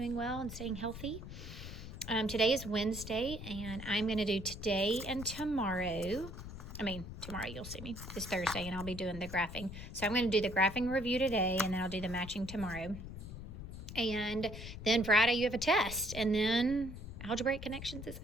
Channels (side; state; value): left; noise; rumble, 10 dB below the sound